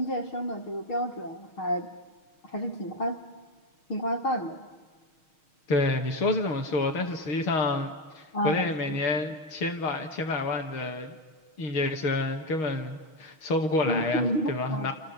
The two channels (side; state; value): right; late; 6.4 ms